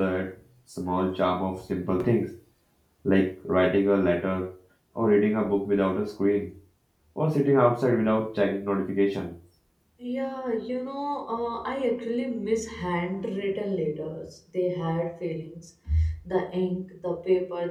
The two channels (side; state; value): both; identical; correlation 1.00